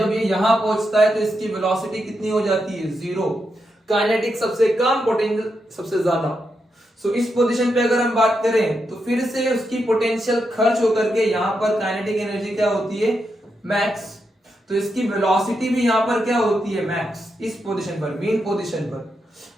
ये यहां पहुंचता है तो इसकी वेलोसिटी कितनी हो जाती है? 0। काइनेटिक सबसे कम, पोटेंशियल सबसे ज्यादा। सो इस पोजीशन पे अगर हम बात करें तो फिर से उसकी पोटेंशियल खर्च होकर के यहां पर काइनेटिक एनर्जी क्या होती है? मैक्स। तो इसकी वेलोसिटी भी यहां पर क्या होती है? मैक्स। इस पोजीशन पर, मेन पोजीशन पर,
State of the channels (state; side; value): normal; both; correlation 0.84